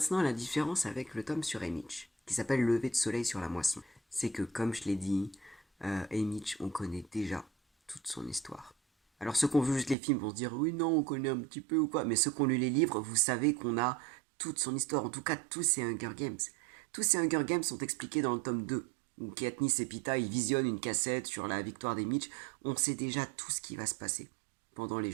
la différence avec le tome sur Emmich, qui s'appelle Lever de soleil sur la moisson, c'est que, comme je l'ai dit, Emmich, on connaît déjà toute son histoire. Alors ceux qui ont vu juste les films vont se dire oui non on connaît un petit peu ou quoi, mais ceux qui ont lu les livres, vous savez qu'on a toute son histoire, en tout cas tous ces Hunger Games. Tous ces Hunger Games sont expliqués dans le tome 2, où Katniss et Pita ils visionnent une cassette sur la victoire des Mitch. On sait déjà tout ce qui va se passer pendant les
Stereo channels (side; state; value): left; drops out; at 10.0 s